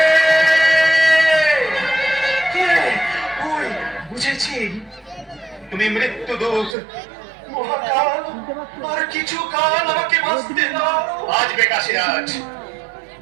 কে? ওই, বুঝেছি, তুমি মৃত্যুদূত মহাকাল। আর কিছু কাল আমাকে বাঁচতে দাও। বাঁচবে কাশীরাজ,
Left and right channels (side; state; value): left; drops out; at 6.8 s